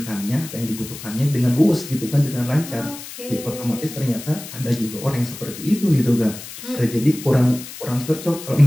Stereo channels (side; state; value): left; noise; hiss, 13 dB below the sound